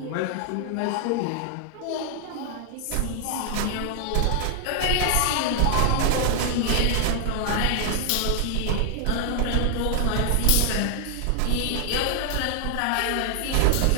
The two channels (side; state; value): both; different; correlation 0.00